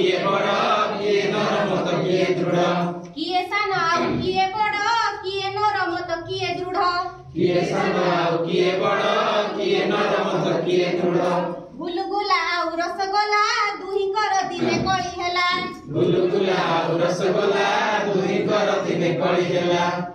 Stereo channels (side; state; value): both; identical; correlation 1.00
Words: बड़ किए नरम तो किए दृढ़ किए सान आउ किए बड़ किए नरम तो किए दृढ़ किए सान आउ किए बड़ किए नरम तो किए दृढ़ गुलगुला आउ रसगोला दुहिंकर दिने कड़ी हेला गुलगुला आउ रसगोला दुहिंकर दिने कड़ी हेला